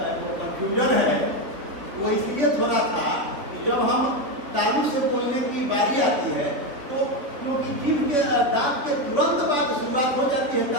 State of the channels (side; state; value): left; late; 4.0 ms